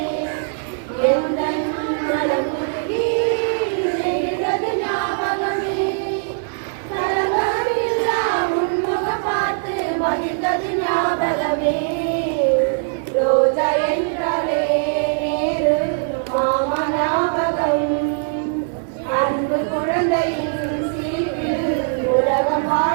எந்தன் மனம் உருகி எழுந்தது ஞாபகமே. கலங்கமில்லா உன்முகம் பார்த்து மகிழ்ந்தது ஞாபகமே. ரோஜா என்றாலே நேரு மாமா ஞாபகம். அன்பு குழந்தையின் சிரிப்பில் உலகம்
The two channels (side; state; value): left; silent; digital silence